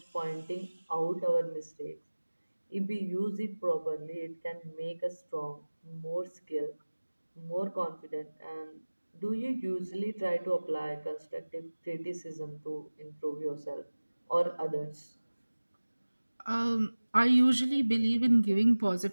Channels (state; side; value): inverted; both; correlation -1.00